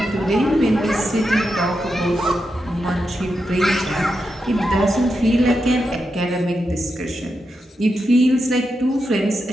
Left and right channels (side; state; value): both; normal; correlation 0.86